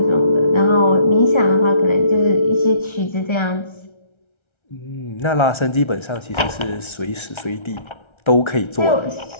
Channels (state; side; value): late; right; 1.3 ms